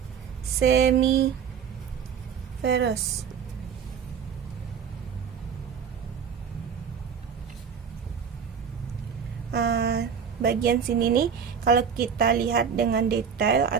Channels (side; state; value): left; quieter; 7.0 dB